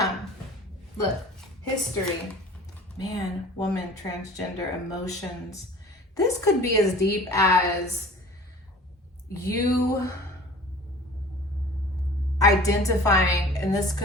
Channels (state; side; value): normal; both; correlation 0.44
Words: Look, history. Man, woman, transgender, emotions. This could be as deep as you identifying, and this